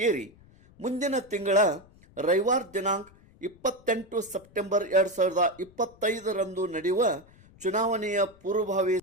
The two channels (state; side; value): noise; left; rumble, 26 dB below the sound